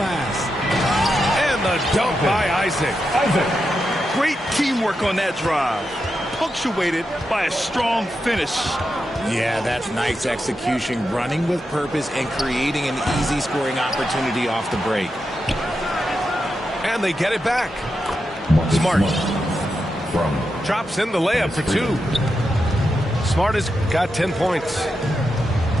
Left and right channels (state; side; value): normal; both; correlation 0.87